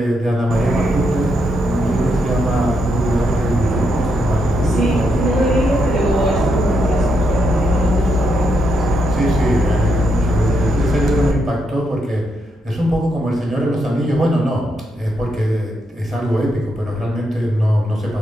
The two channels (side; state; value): both; normal; correlation 0.80